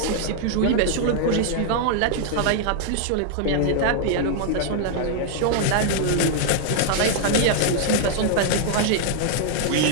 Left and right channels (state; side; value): different; both; correlation -0.01